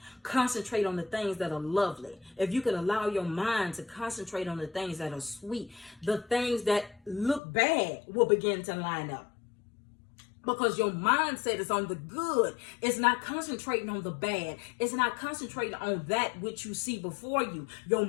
concentrate on the things that are lovely, if you can allow your mind to concentrate on the things that are sweet, the things that look bad will begin to line up. Because your mindset is on the good. It's not concentrating on the bad. It's not concentrating on that which you see before you. Your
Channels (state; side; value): drops out; right; at 7.4 s